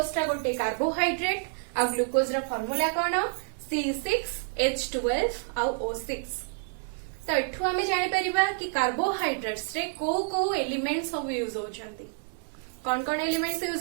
टा गोटे कार्बोहाइड्रेट आ ग्लूकोज रा फार्मूला कोन? C6H12 आ O6। तो एठू हमें जानि परिबा कि कार्बोहाइड्रेट्स रे को एलिमेंट सब यूज होचंती। कौन कौन एलिमेंट्स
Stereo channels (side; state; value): left; silent; 57 dB below the other